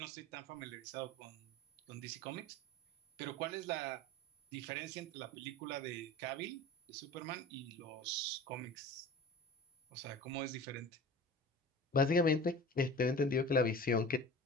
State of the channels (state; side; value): normal; both; correlation 0.37